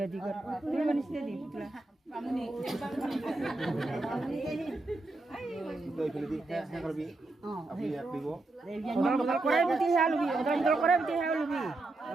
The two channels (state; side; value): quieter; left; 3.0 dB